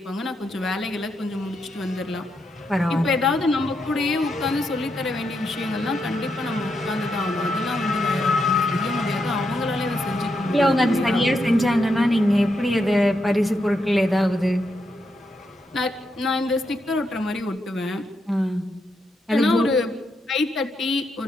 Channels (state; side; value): normal; both; correlation 0.82